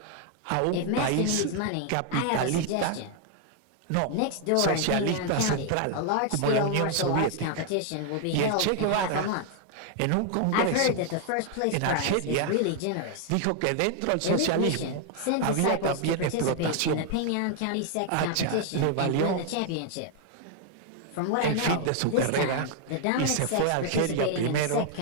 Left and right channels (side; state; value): both; different; correlation 0.00